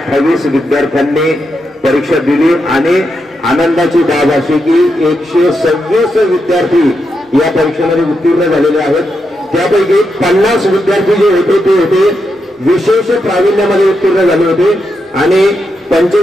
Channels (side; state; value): both; normal; correlation 0.84